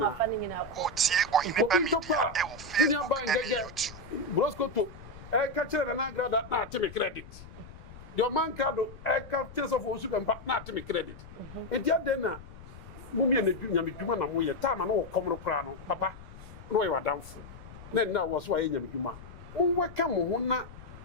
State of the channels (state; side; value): noise; left; rumble, 16 dB below the sound